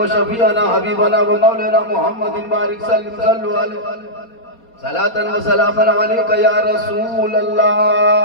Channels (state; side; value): late; right; 4.3 ms